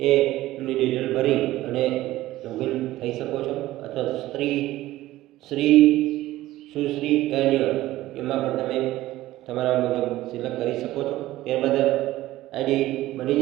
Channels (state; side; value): quieter; left; 16.1 dB